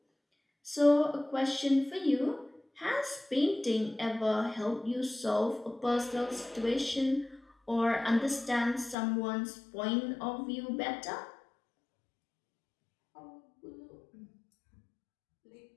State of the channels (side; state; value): right; drops out; at 9.0 s